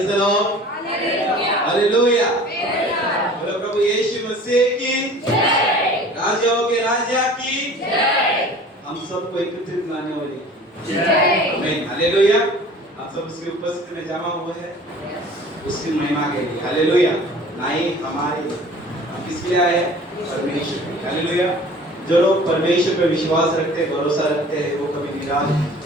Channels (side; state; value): both; normal; correlation 0.45